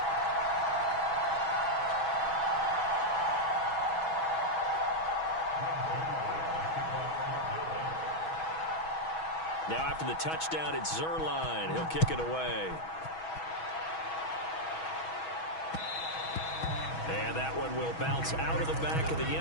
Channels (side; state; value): right; late; 6.2 ms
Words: Now after the touchdown, it's Zuerlein. He'll kick it away. And that one will bounce out of the back of the